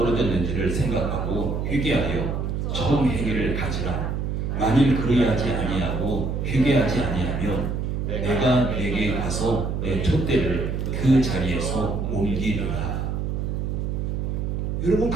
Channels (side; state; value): right; noise; hum, 1 dB below the sound